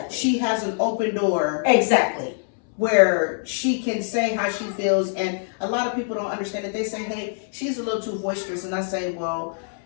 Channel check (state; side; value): silent; right; 63 dB below the other